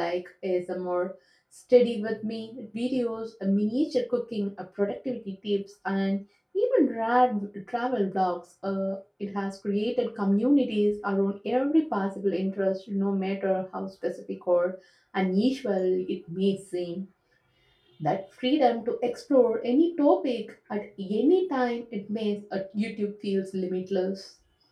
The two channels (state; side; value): identical; both; correlation 1.00